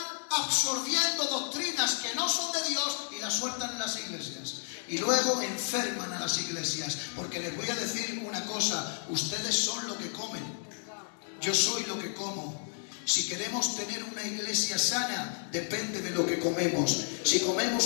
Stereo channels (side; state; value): right; silent; 57 dB below the other